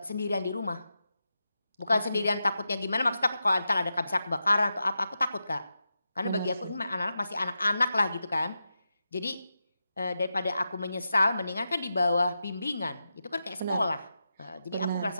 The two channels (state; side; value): inverted; both; correlation -0.89